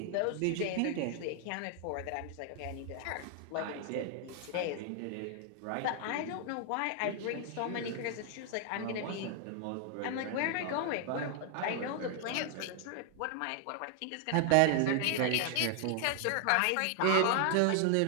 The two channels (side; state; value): both; different; correlation 0.00